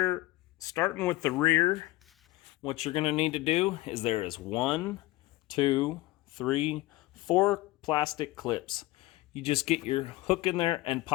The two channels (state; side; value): quieter; right; 18.6 dB